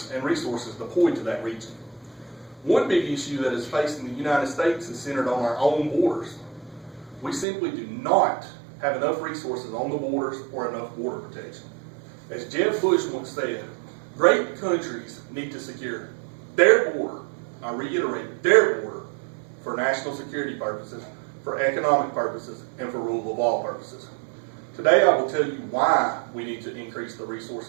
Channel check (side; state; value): left; drops out; at 7.5 s